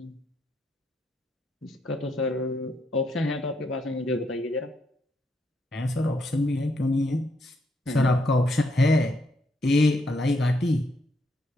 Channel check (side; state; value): both; normal; correlation 0.76